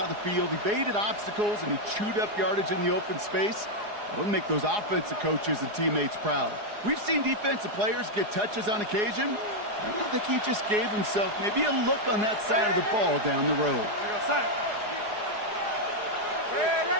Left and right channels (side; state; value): left; late; 4.8 ms